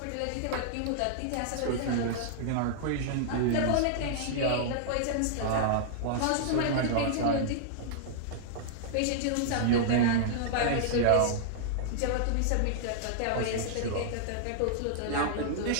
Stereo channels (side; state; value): both; different; correlation -0.01